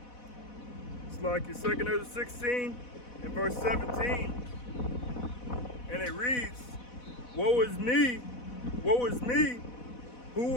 It's like your 2nd Ezra 16 and verse 17. And it reads, woe is me, who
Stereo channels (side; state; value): right; late; 4.1 ms